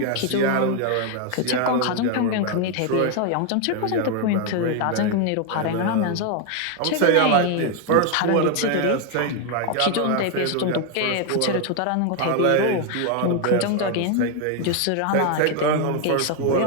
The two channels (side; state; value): both; different; correlation 0.01